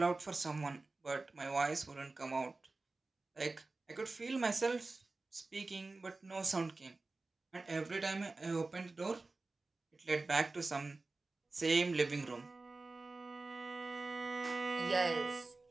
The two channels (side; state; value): left; quieter; 3.4 dB